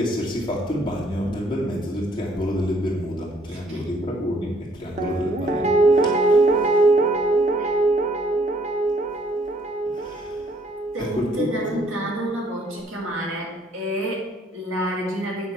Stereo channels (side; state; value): both; normal; correlation 0.64